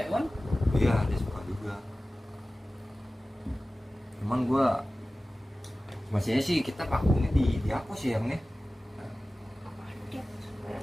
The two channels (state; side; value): normal; both; correlation 0.96